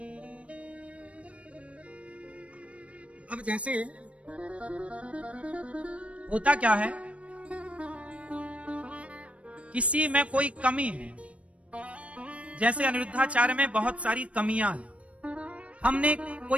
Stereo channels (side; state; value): left; late; 0.063 ms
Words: अब जैसे होता क्या है, किसी में कोई कमी है, जैसे अनिरुद्धाचार्य में बहुत सारी कमियां हैं। हमने